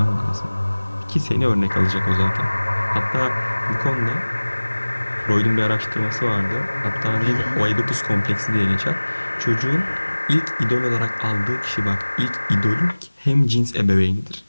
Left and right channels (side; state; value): both; inverted; correlation -1.00